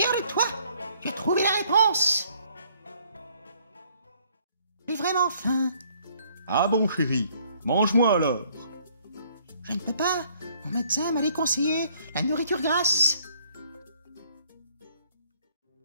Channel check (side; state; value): both; inverted; correlation -0.63